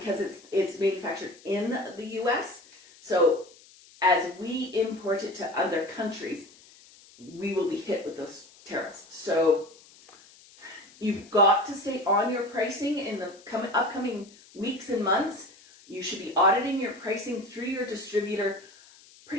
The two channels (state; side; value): noise; left; hiss, 24 dB below the sound